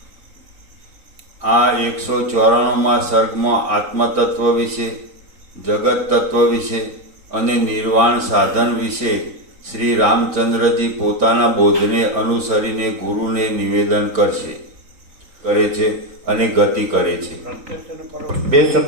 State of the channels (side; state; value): left; late; 3.9 ms